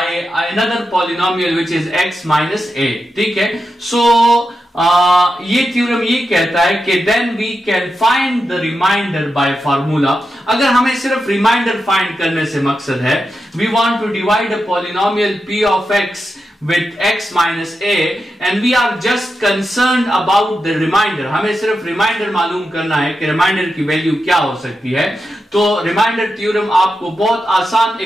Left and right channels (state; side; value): normal; both; correlation 0.89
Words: another polynomial which is x minus a। ठीक है, so ये theorem ये कहता है कि then we can find the remainder by formula. अगर हमें सिर्फ रिमाइंडर फाइंड करने से मकसद है, we want to divide a polynomial p of x with x minus a and we are just concerned about the remainder। हमें सिर्फ reminder मालूम करना है कि रिमाइंडर की वैल्यू क्या हो सकती है। तो रिमाइंडर थ्योरम आपको बहुत आसान